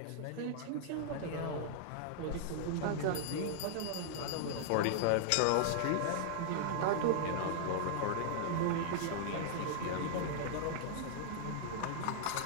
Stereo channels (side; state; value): both; different; correlation -0.01